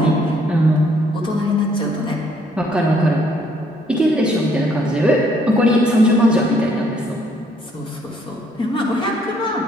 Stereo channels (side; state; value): both; normal; correlation 0.66